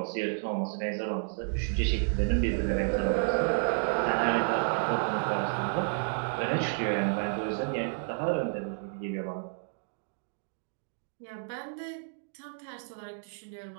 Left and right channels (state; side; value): silent; left; digital silence